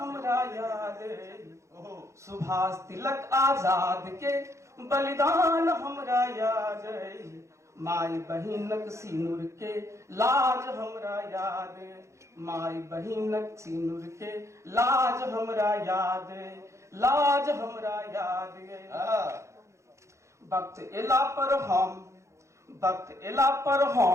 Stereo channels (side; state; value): left; late; 0.14 ms